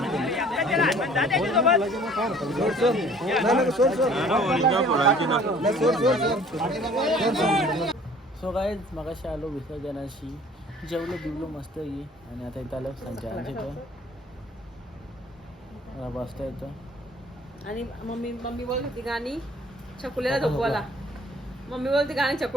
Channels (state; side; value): normal; both; correlation 0.53